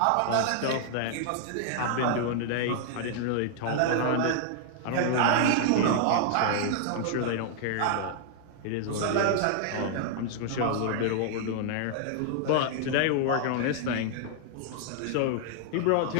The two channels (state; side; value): different; both; correlation -0.01